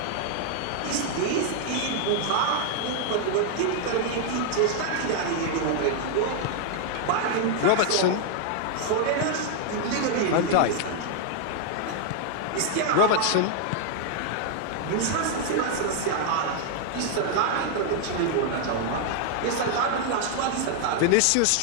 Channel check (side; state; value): both; different; correlation 0.00